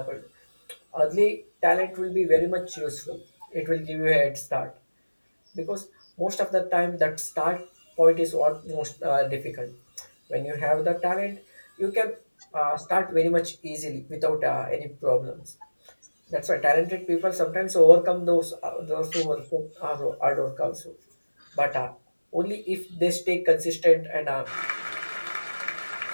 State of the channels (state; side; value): inverted; both; correlation -1.00